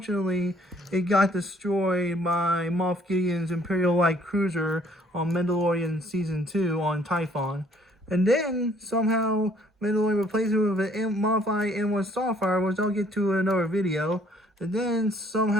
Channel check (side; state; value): both; normal; correlation 0.61